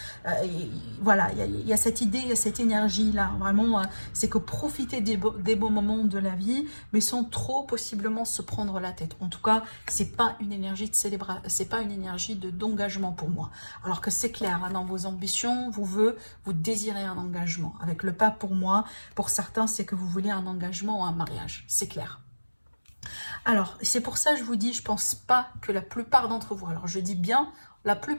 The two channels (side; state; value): both; inverted; correlation -1.00